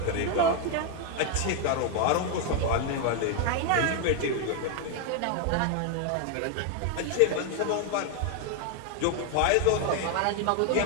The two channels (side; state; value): both; different; correlation 0.00